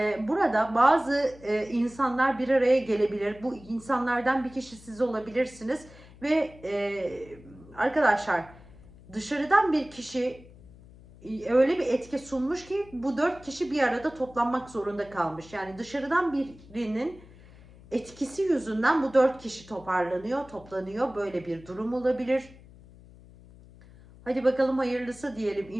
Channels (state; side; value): noise; left; hum, 22 dB below the sound